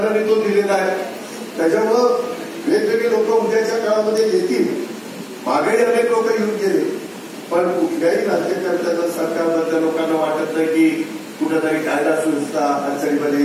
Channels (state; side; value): identical; both; correlation 1.00